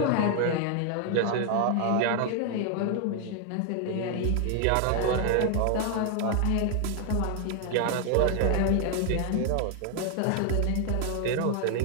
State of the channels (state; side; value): different; both; correlation 0.00